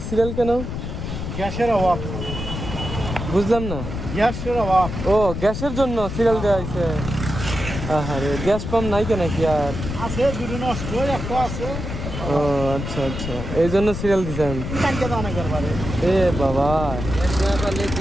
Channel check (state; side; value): noise; left; rumble, 6 dB below the sound